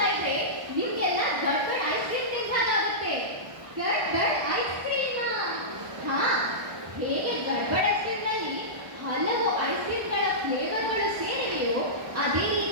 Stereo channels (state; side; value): late; left; 1.2 ms